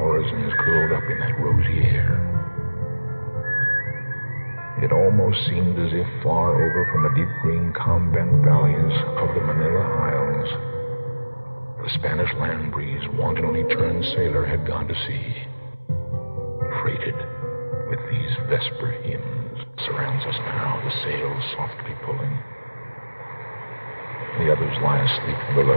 curled up in that rosy air. It almost seemed as if far over from the deep green calm-bent valleys of the Manila Isles, the Spanish land breeze wantonly turned sailor had gone to sea, freighted with these vesper hymns. Surrounds us now, the sails softly pulling. The others lie asleep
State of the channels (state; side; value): inverted; both; correlation -1.00